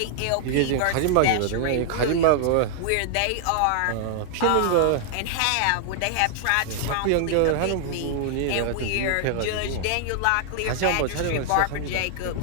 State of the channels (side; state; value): both; different; correlation 0.00